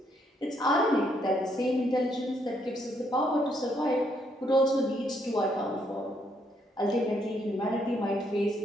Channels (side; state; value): both; normal; correlation 0.73